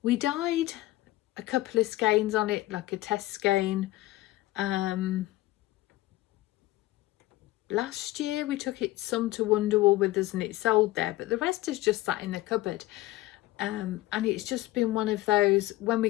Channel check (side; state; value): right; quieter; 17.6 dB